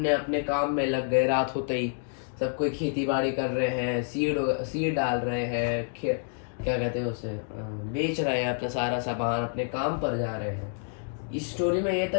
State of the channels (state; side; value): silent; right; digital silence